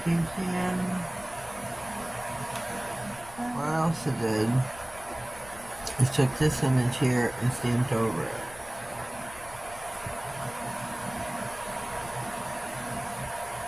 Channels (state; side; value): noise; left; rumble, 18 dB below the sound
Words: you can. What else I did is took this image here and stamped over it.